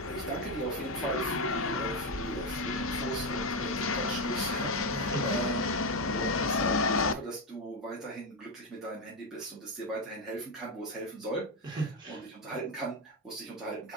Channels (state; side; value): normal; both; correlation 0.10